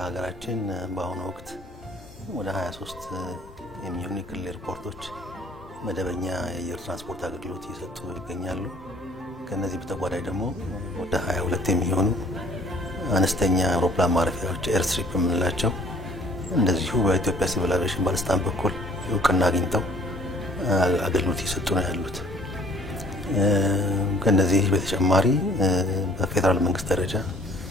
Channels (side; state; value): both; normal; correlation 0.57